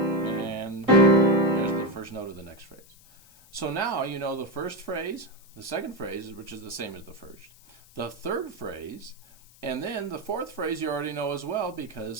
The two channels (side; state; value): left; noise; hiss, 25 dB below the sound